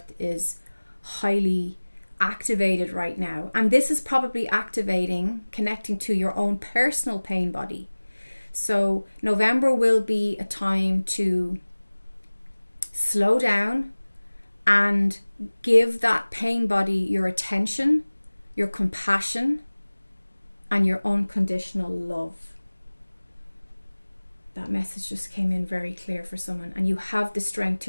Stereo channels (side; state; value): both; inverted; correlation -1.00